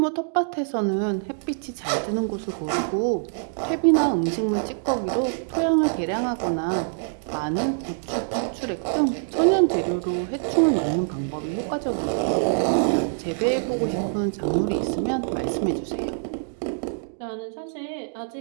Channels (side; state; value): left; silent; digital silence